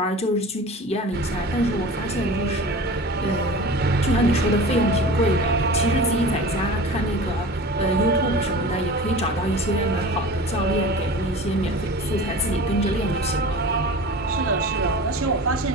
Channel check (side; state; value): both; normal; correlation 0.37